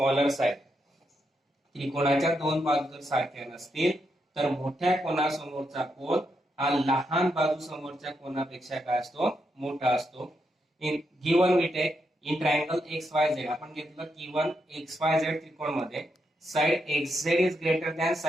side. त्रिकोणाच्या दोन बाजू जर सारख्या नसतील तर मोठ्या कोणासमोरचा कोन हा लहान बाजू समोरच्या कोनापेक्षा काय असतो, मोठा असतो. In given we take in triangle XYZ आपण घेतलं गिवन XYZ त्रिकोण मध्ये side XZ is greater than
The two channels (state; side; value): normal; both; correlation 0.82